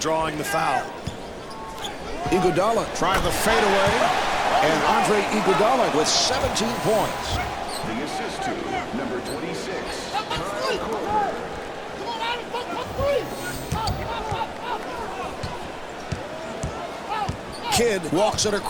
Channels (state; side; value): identical; both; correlation 1.00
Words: the foul. Iguodala trying the fadeaway, and Andre Iguodala with 17 points. The assist to number 26, Kyle Korver. Kidd walks it